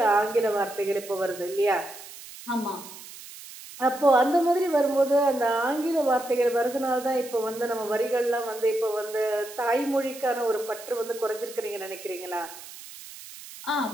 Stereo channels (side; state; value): right; noise; hiss, 15 dB below the sound